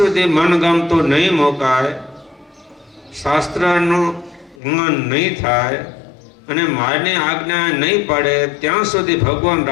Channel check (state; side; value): drops out; right; at 4.5 s